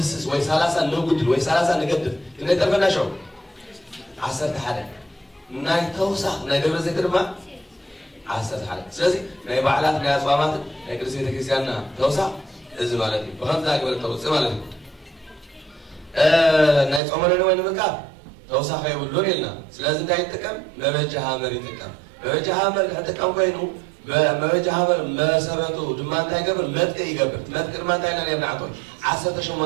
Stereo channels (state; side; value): drops out; left; at 17.0 s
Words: وي 3 نقدر وي 3 نقدر كنا يترفنا شو 10 حدا ناي توسع ناي دبر زيت رما 10 حدا سلازي ناي بعلات ناي أصوامات ناي كرسي تكريسيانا توسع إذا مالتي بخمس ذاك ولا توسع مالتي ناي صومنا نوين مكاب توسع خير ولون يلنا سلازي ناي تكم ما بيجها مري تكم ما بيجها مري حتى كم كينو ما بيجها مري ما سبته دمان تاي قبل متك يقبل متك ما تاي ناني بنعطون 10